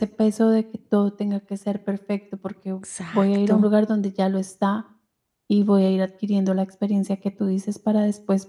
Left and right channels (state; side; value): identical; both; correlation 1.00